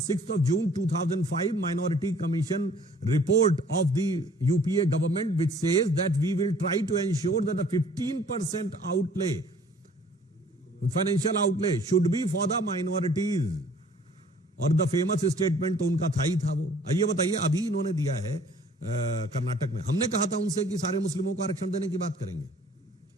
of June 2005 Minority Commission report of the UPA government, which says that we will try to ensure that the 15% outlay, financial outlay, should be for the minorities. और the famous statement तो उनका था ही था वो। ये बताइए, अभी इन्होंने दिया है कर्नाटक में। हमने कहा था उनसे कि सारे मुस्लिमों को आरक्षण देने की बात करेंगे।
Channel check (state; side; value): normal; both; correlation 0.55